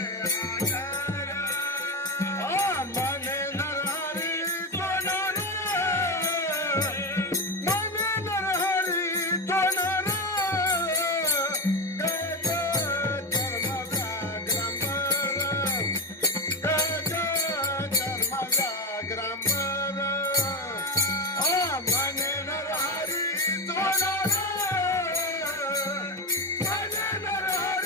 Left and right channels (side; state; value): both; normal; correlation 0.15